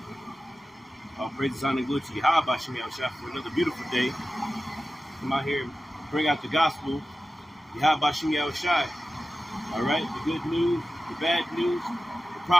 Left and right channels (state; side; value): normal; both; correlation 0.94